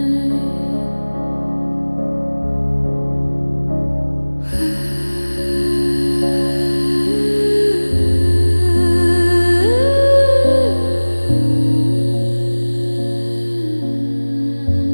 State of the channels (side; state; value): both; inverted; correlation -1.00